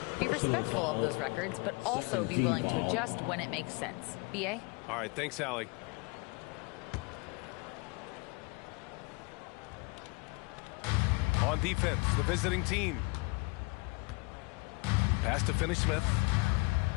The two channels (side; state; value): right; quieter; 28.1 dB